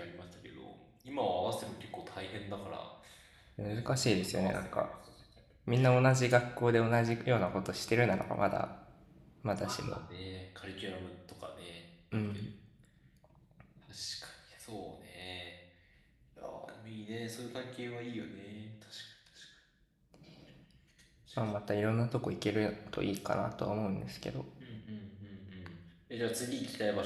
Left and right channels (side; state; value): both; identical; correlation 1.00